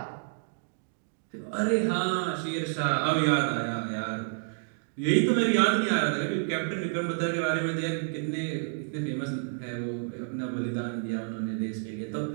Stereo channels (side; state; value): left; silent; digital silence